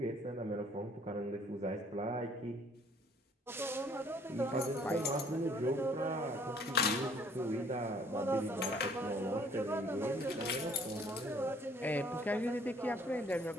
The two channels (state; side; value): normal; both; correlation 0.59